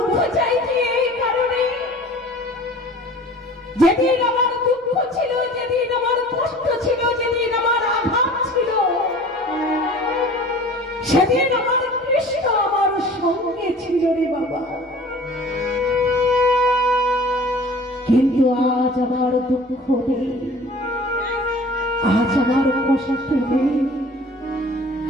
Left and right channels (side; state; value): both; normal; correlation 0.45